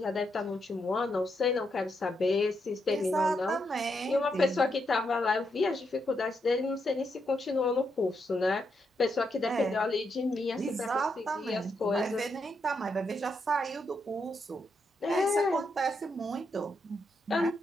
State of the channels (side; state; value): both; normal; correlation 0.80